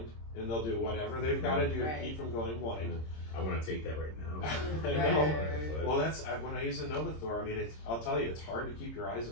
and they'll do whatever they've got to do to keep from going blind. I want to take that right now. I know. Well, that's when I use the Novathor. I mean, I'll tell you, it's hard to keep your eyes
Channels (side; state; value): right; late; 26 ms